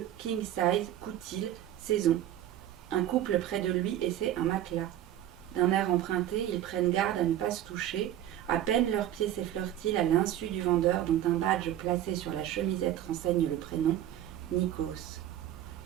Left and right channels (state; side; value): quieter; left; 12.0 dB